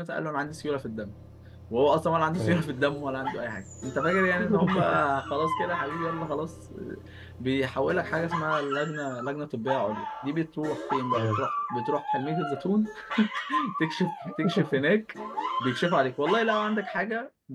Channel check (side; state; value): both; identical; correlation 1.00